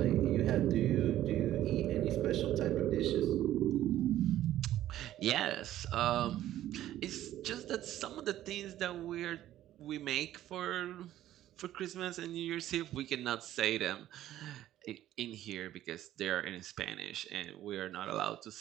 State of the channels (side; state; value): left; quieter; 13.1 dB